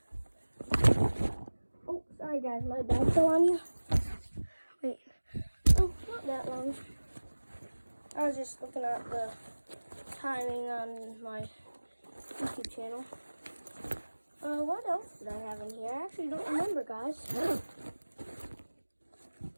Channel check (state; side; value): inverted; both; correlation -1.00